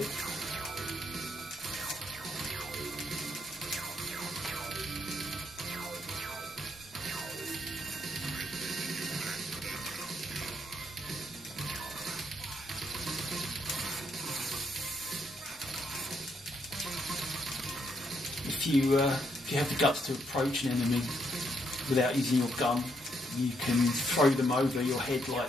If you have the guts to approach an enemy without using your gun, you can throw them over your head like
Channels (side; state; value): both; normal; correlation 0.75